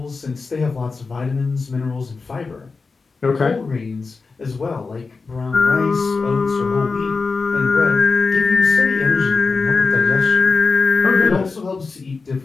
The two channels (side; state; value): right; quieter; 4.4 dB